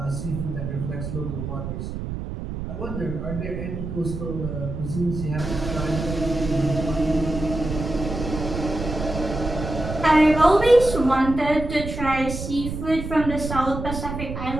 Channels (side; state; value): right; noise; rumble, 6 dB below the sound